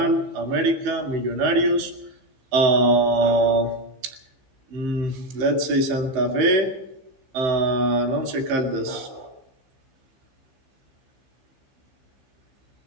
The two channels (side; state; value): left; late; 16 ms